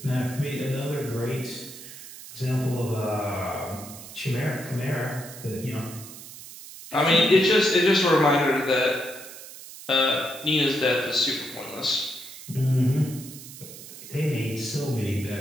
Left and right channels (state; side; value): noise; right; hiss, 15 dB below the sound